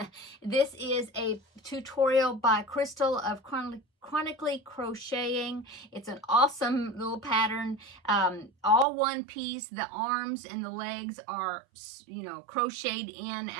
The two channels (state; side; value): drops out; left; at 8.8 s